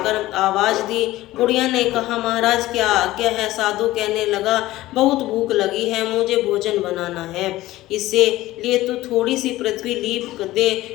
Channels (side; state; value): right; quieter; 16.8 dB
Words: आवाज दी। बुढ़िया ने कहा, महाराज क्या आज्ञा है? साधु कहने लगा, बहुत भूख लगी है, मुझे भोजन बनाना है। इससे लिए तू थोड़ी सी पृथ्वी लीप